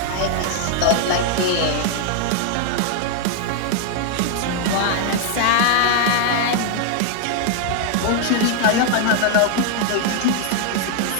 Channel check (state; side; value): different; both; correlation 0.00